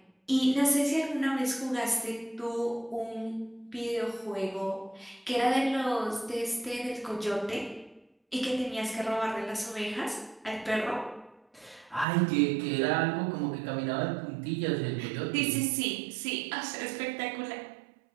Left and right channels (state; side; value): drops out; left; at 12.1 s